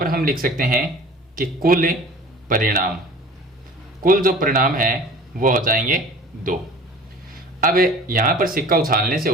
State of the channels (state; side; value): normal; both; correlation 0.43